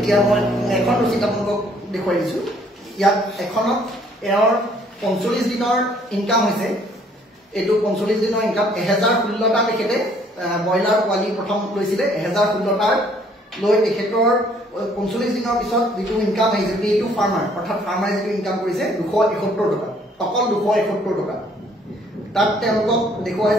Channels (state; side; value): normal; both; correlation 0.62